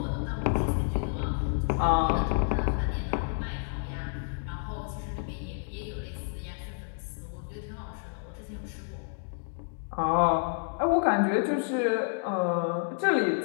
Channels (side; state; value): right; silent; 58 dB below the other